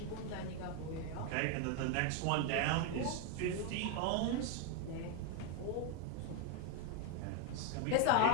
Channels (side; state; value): both; different; correlation 0.01